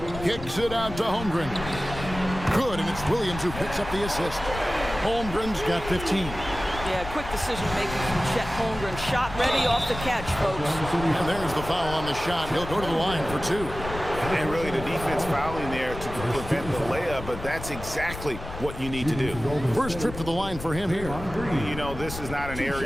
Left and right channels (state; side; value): noise; left; rumble, 10 dB below the sound